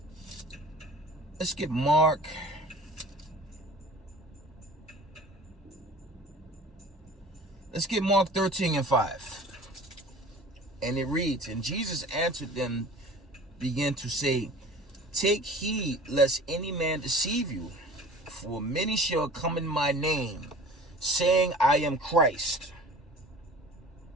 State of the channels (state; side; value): normal; both; correlation 0.43